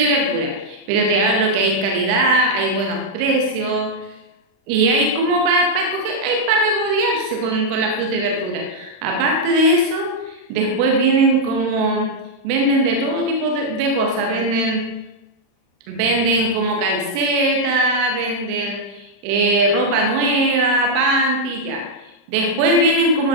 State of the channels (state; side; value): late; left; 35 ms